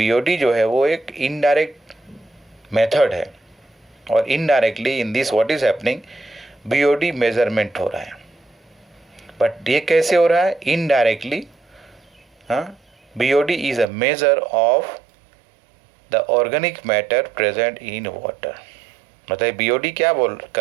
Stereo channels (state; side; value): drops out; left; at 13.9 s